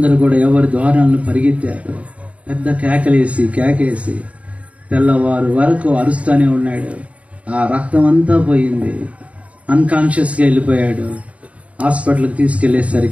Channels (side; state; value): left; late; 0.066 ms